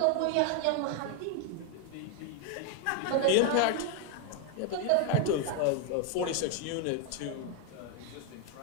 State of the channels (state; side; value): different; both; correlation 0.01